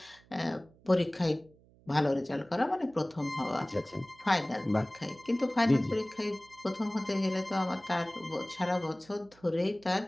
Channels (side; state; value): right; noise; hum, 28 dB below the sound